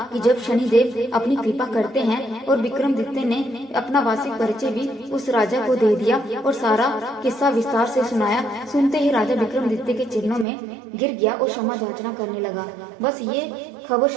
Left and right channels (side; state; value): left; drops out; at 10.5 s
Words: कि जब शनिदेव अपनी कृपा करते हैं, और विक्रमादित्य ने अपना वार्षिक परिचय भी उस राजा को दे दिया और सारा किस्सा विस्तार से सुनाया। सुनते ही राजा विक्रमादित्य के चरणों में गिर गया और क्षमा याचना करने लगा। बस ये खबर